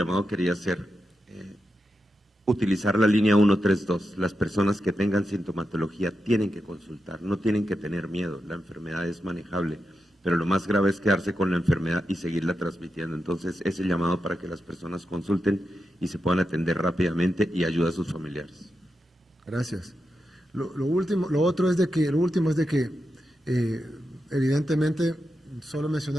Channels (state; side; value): normal; both; correlation 0.88